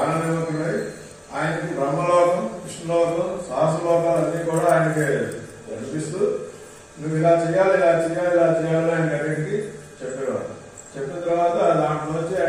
ఆయనకి బ్రహ్మలోకం, విష్ణులోకం, సహస్రలోకాలు అన్ని కూడా ఆయనకి కనిపిస్తూ నువ్వు ఇలా చేయాలి, ఇలా చేయాలి, ఇలా చేయాలి ఆయన అన్నింటికి చెప్పేవాడు. చెప్పిన తర్వాత దాంట్లో వచ్చి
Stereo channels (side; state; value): both; identical; correlation 1.00